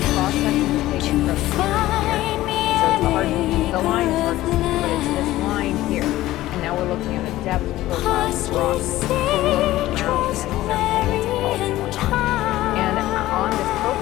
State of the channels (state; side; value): quieter; right; 15.9 dB